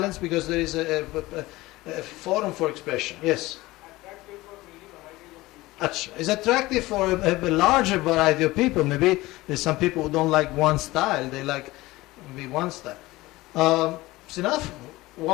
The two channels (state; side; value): quieter; right; 19.2 dB